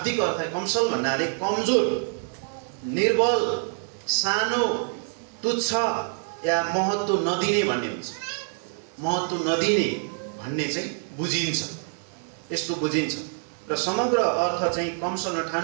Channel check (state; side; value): silent; left; 57 dB below the other